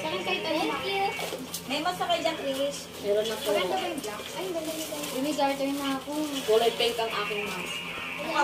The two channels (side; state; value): both; identical; correlation 1.00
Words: akin kahit ano, ma. May mas kayo dyan, Chris. Meron na po. Maganda ba yung black? Ay, ganda nito. May garter na ako. Kulay pink ang aking mask. Mukha